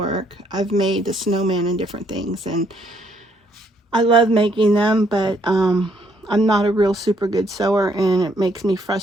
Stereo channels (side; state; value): both; normal; correlation 0.69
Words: I've made the snowman and different things, and I love making them, but I'm not a real super good sewer, and it makes me